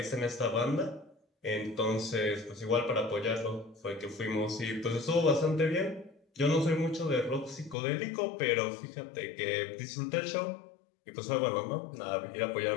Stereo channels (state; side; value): drops out; right; at 7.8 s